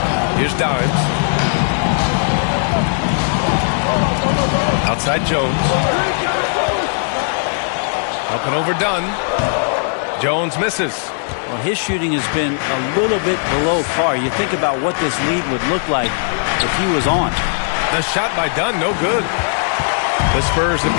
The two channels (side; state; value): right; silent; digital silence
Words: Here's Dimes. Outside Jones. Up and over Dunn. Jones misses. Well, his shooting has been a little bit below par. You think about what this lead would look like if he was on. The shot by Dunn, no good. The Spurs have